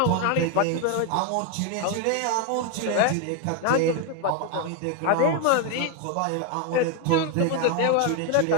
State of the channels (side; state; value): both; different; correlation 0.01